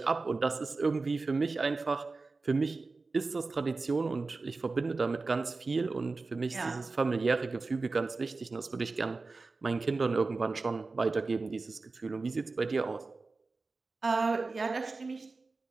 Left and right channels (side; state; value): left; quieter; 3.8 dB